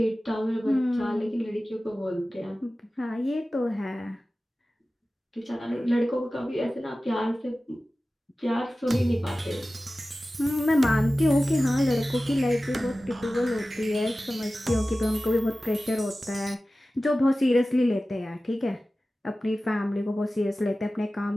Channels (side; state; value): both; normal; correlation 0.96